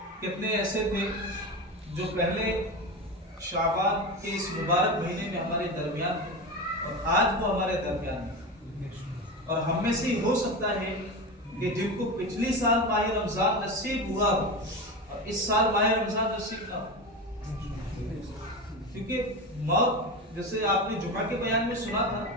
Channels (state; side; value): normal; both; correlation 0.23